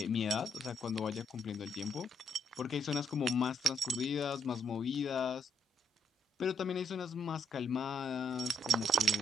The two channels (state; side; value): normal; both; correlation 0.74